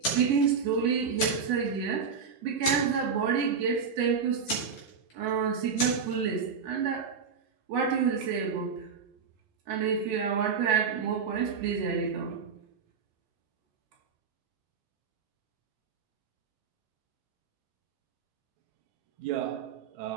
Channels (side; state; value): left; quieter; 6.0 dB